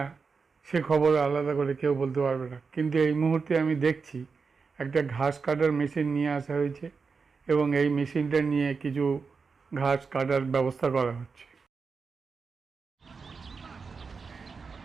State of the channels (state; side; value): quieter; left; 5.0 dB